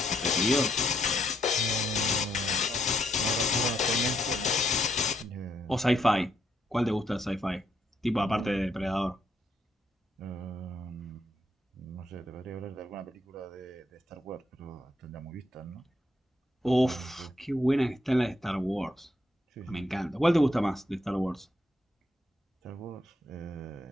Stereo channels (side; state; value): both; normal; correlation 0.75